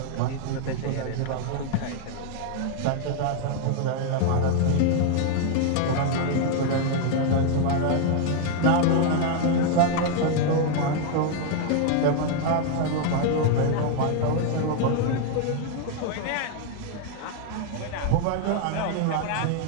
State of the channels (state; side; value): different; both; correlation 0.00